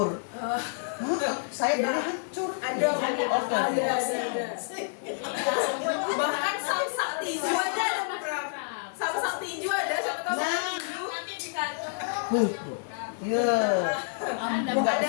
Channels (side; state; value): right; silent; digital silence